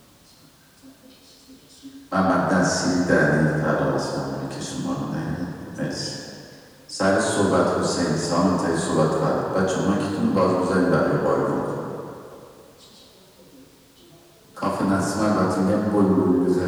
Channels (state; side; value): identical; both; correlation 1.00